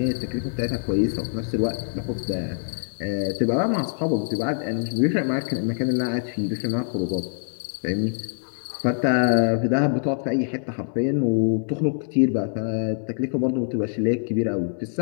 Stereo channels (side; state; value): right; silent; 62 dB below the other